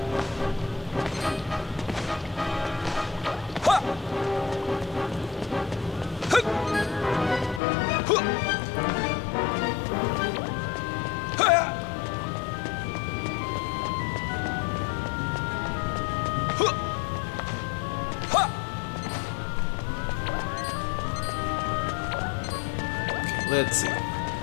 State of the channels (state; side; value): drops out; right; at 7.6 s